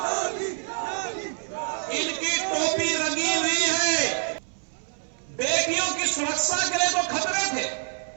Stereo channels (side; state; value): left; silent; 61 dB below the other